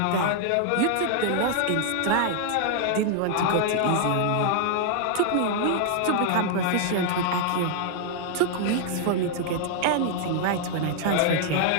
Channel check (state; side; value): different; both; correlation 0.00